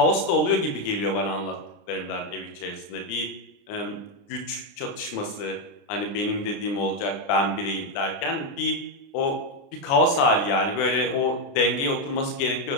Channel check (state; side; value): late; right; 29 ms